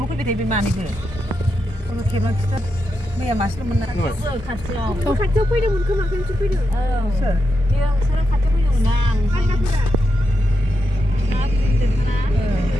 फैबाय थायो बे मानैबो खौनो खेबना खिथा मैया मासेल'मोन ना खाथियाव खाथियाव फैदोंमोन खोमा खेमसे फैदों सोर बेयो नोंसोरो खाथियाव फैदोंमोन ना फान्दाफोरा ना बुंदों ना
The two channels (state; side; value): normal; both; correlation 0.86